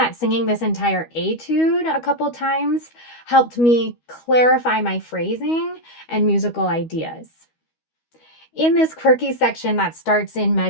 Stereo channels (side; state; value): right; late; 12 ms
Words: singing this entire etude a couple times helped me clarify my phrasing and musical ideas. In this quirky section that starts in